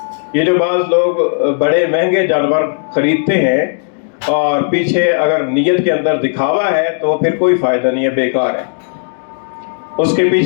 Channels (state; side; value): silent; right; digital silence